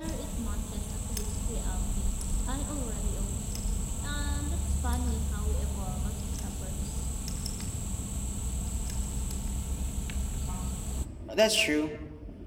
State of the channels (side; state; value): both; identical; correlation 1.00